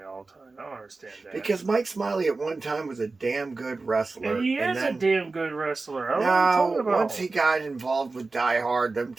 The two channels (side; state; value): left; quieter; 3.7 dB